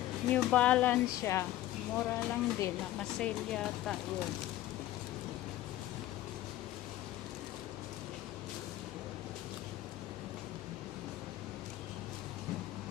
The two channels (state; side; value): quieter; right; 14.7 dB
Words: New Balance siya. Mura lang din. Naka-sale yata yun.